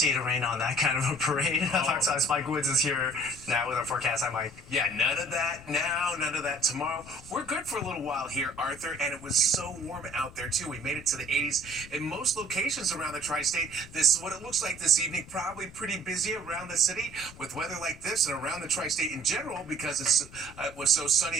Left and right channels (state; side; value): noise; left; rumble, 19 dB below the sound